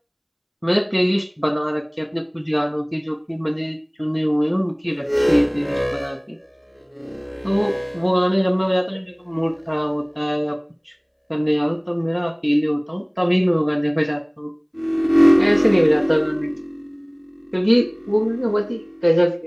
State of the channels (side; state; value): both; identical; correlation 1.00